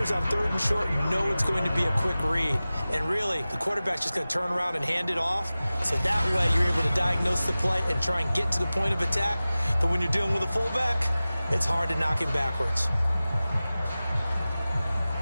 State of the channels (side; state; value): both; inverted; correlation -0.97